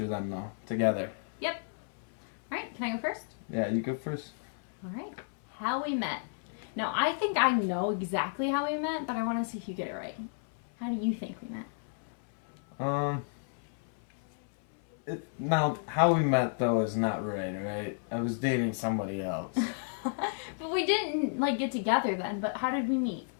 them though, together. Yep. Alright, can I go first? Yeah, you go first. Alright. How we met. Now, I think I know exactly how we met, but I want to see if you get it right. How do you think we met? Now, how we met though is not right? I was dating somebody else. But we didn't, like, get together then, but how did we meet?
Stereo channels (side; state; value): right; silent; 56 dB below the other